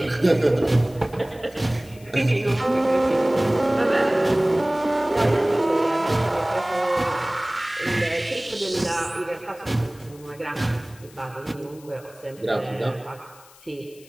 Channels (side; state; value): left; noise; hiss, 24 dB below the sound